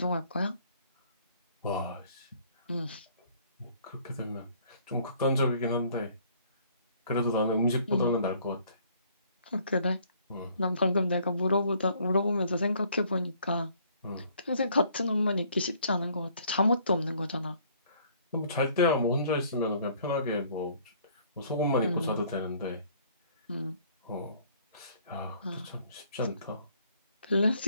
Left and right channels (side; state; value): both; inverted; correlation -0.61